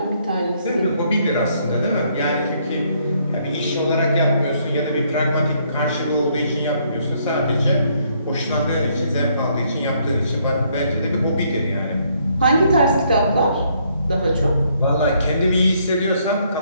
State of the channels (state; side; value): inverted; both; correlation -0.69